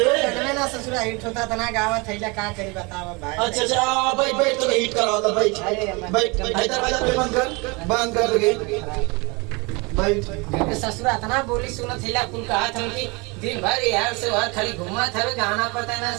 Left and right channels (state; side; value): quieter; left; 28.0 dB